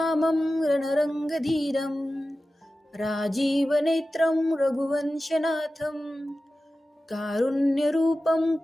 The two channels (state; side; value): normal; both; correlation 0.94